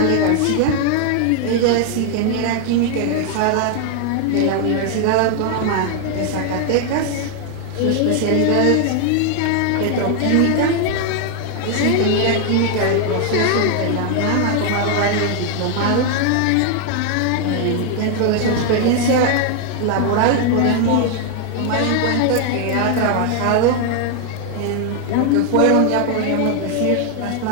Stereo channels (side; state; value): both; different; correlation 0.00